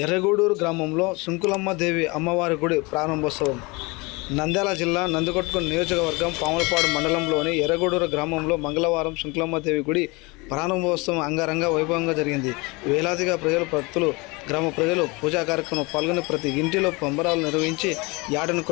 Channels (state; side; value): quieter; right; 26.2 dB